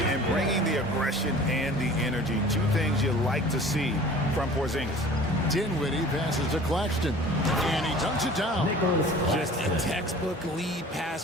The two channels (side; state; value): both; normal; correlation 0.44